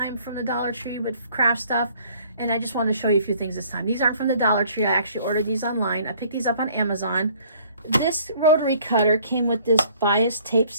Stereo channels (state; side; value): inverted; both; correlation -0.57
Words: from the Dollar Tree with craft stuff, and I just wanted to show you a few things this time. These aren't from the Dollar Tree. I actually ordered these online. I picked these up on Amazon. This rotary cutter came with this bias tape